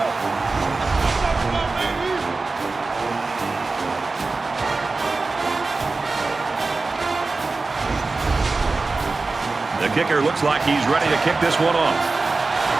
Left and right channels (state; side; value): quieter; left; 3.7 dB